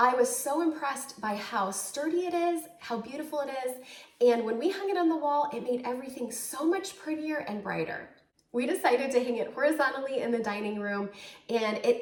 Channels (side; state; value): both; identical; correlation 1.00